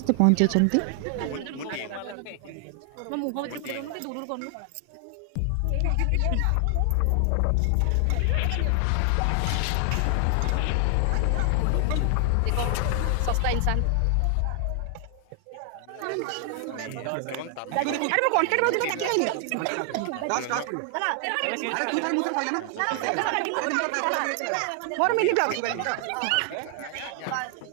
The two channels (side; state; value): both; different; correlation 0.00